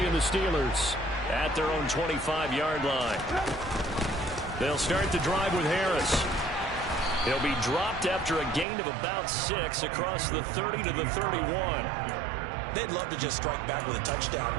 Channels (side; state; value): left; drops out; at 8.7 s